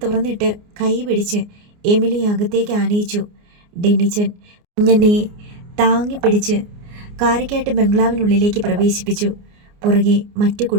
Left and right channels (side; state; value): left; late; 29 ms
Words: തുറന്നിട്ട് കൈ പിടിച്ച് എമിലി അകത്തേക്ക് ആനയിച്ചു. ഡെന്നിച്ചൻ കുഞ്ഞനെ താങ്ങിപ്പിടിച്ച് കാരക്കാട്ട് ബംഗ്ലാവിനുള്ളിലേക്ക് പ്രവേശിപ്പിച്ചു. പുറകെ മറ്റു